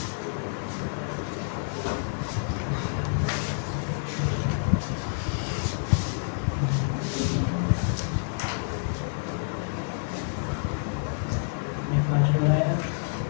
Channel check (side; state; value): right; silent; 56 dB below the other